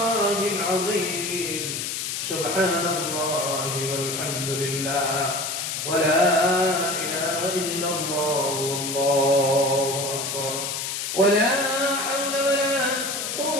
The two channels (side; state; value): left; noise; hiss, 3 dB below the sound